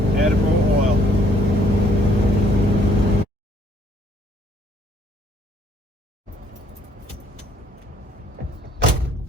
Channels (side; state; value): both; normal; correlation 0.64